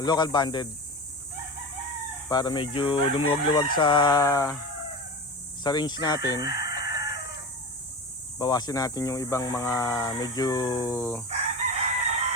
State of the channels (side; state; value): both; normal; correlation 0.27